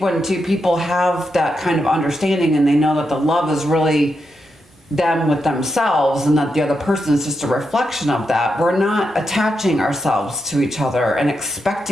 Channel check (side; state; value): both; normal; correlation 0.85